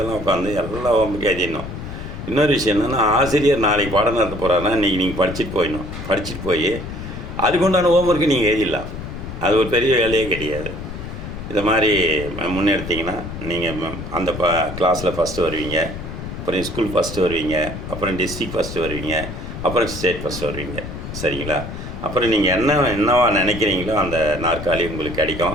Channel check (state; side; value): noise; left; rumble, 8 dB below the sound